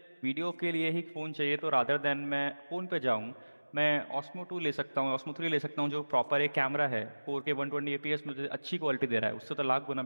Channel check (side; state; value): both; inverted; correlation -1.00